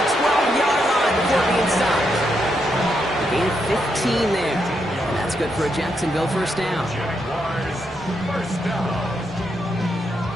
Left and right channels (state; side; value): normal; both; correlation 0.80